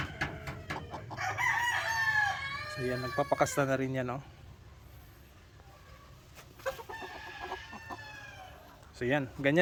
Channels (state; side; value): identical; both; correlation 1.00